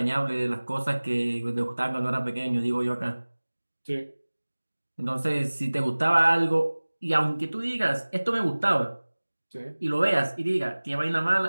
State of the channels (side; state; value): both; inverted; correlation -1.00